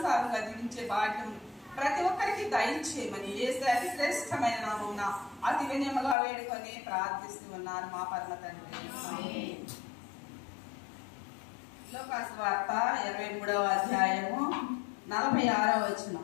జీవించే భాగ్యం ప్రతి ఒక్కరికి దయచేయమని యేసు అతి శ్రేష్టమైన నామమున అతి వినయముగా వేడుకొని ప్రార్థిస్తూ ఉన్నాను మా పరమ తండ్రి. లూకాసు వార్త 23వ అధ్యాయము 46వ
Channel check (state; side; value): drops out; right; at 6.2 s